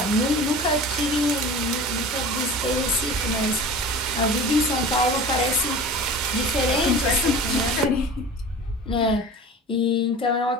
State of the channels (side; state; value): both; normal; correlation 0.37